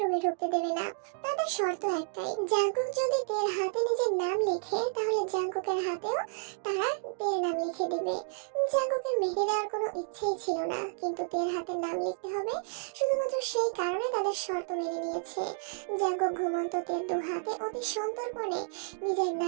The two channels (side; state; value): left; silent; digital silence